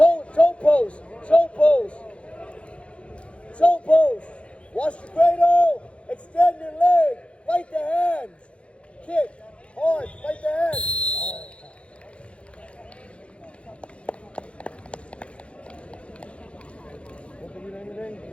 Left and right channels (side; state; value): right; late; 0.060 ms